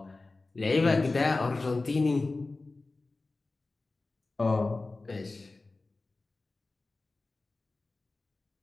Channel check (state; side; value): quieter; right; 3.4 dB